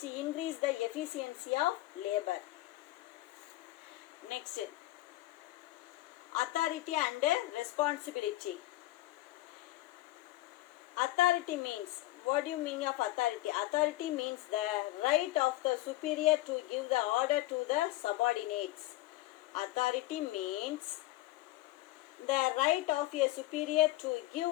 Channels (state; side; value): quieter; right; 17.2 dB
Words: increase the efficiency of labour. Next, authority and responsibility. Authority means, what do you mean of authority? Authority means the right of the superior to give the order to the subordinates. Authority means the right of a superior to give